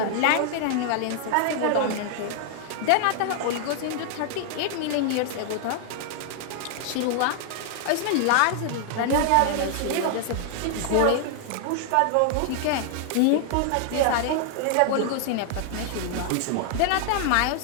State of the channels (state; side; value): different; both; correlation 0.00